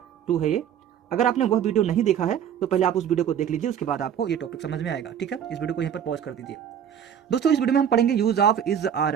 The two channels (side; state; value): left; quieter; 8.9 dB